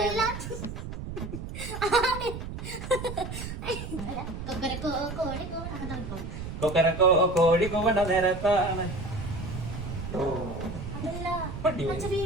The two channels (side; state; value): right; noise; rumble, 7 dB below the sound